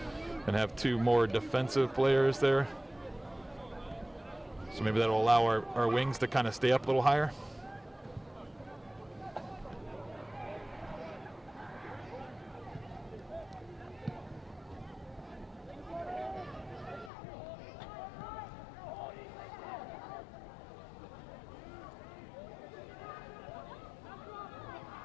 and have 2 more defensive players there. So maybe that'll allow our wings to kind of stay up a little higher.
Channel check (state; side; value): drops out; right; at 17.1 s